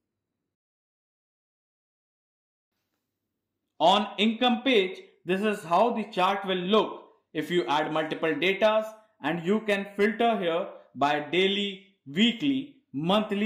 On income page, this is how the chart will look if you add multiple datas and you can filter here by daily, weekly,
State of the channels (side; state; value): both; identical; correlation 1.00